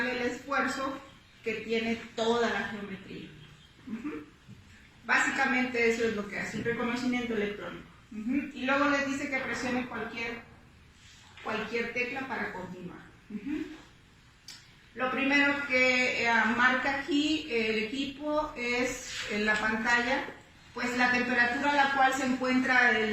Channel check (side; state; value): both; identical; correlation 1.00